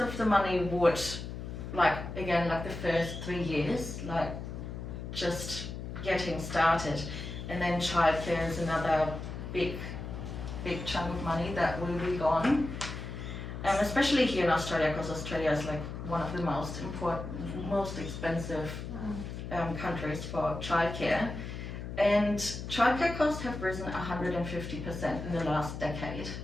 the money would, like the first 3 years, like just getting started, and then childcare is another big chunk of money that will be gone. Especially here in Australia, because Australia is like one of the most expensive countries for childcare. And childcare costs have risen 150% in the last decade.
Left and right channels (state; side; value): noise; left; hum, 7 dB below the sound